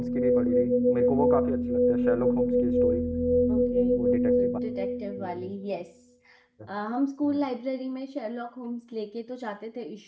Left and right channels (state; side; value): identical; both; correlation 1.00